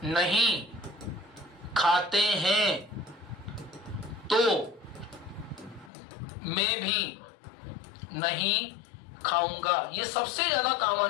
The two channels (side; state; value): right; drops out; at 5.9 s